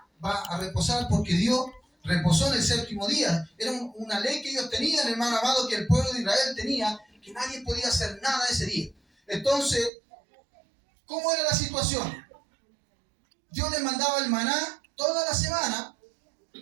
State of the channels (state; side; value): drops out; left; at 9.9 s